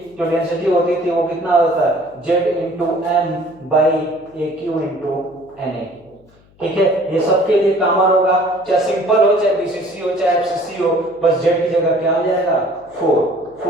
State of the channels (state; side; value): noise; left; hum, 30 dB below the sound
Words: थी वो कितना होता है Z into M by A cube into N A. ठीक है, ये सबके लिए कॉमन होगा, चाहे सिंपल हो चाहे बीसीसी हो चाहे एफसीसी हो, बस जेड की जगह क्या हो जाएगा